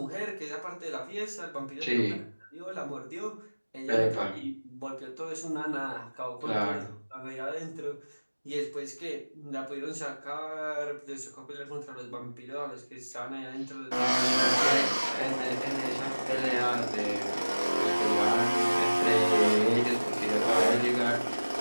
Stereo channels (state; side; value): inverted; both; correlation -1.00